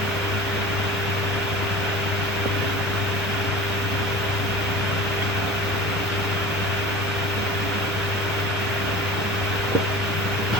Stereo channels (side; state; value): both; normal; correlation 0.38